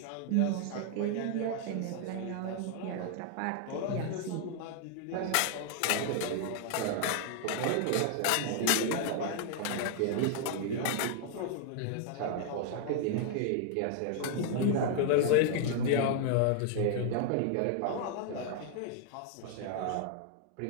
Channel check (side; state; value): both; different; correlation 0.00